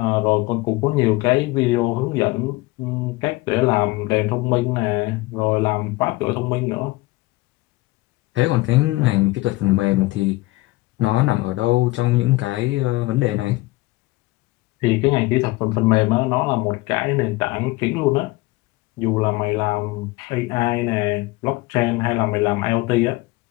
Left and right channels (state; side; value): quieter; right; 20.8 dB